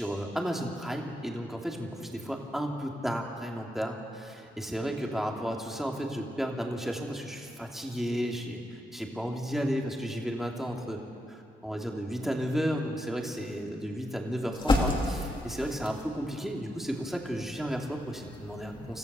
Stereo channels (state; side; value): normal; both; correlation 0.84